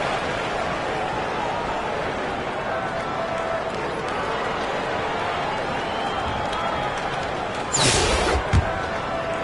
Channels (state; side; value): identical; both; correlation 1.00